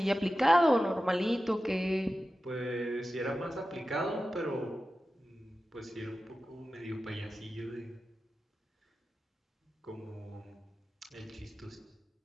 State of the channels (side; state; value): both; normal; correlation 0.94